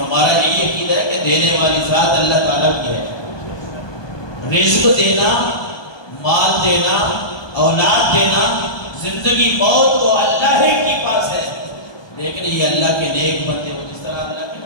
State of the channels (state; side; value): late; right; 1.2 ms